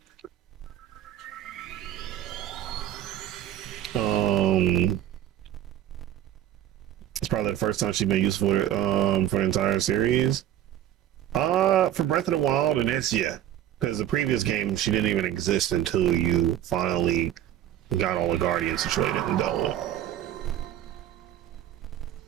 It's probably the first time she's been used for the entire series. For Breath of the Wild, and it's because the previous game she didn't even exist until you finally got all the Guardians situated and dealt with.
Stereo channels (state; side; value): quieter; left; 11.8 dB